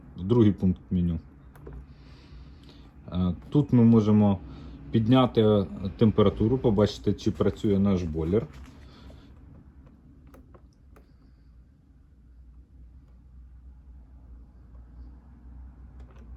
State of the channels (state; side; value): identical; both; correlation 1.00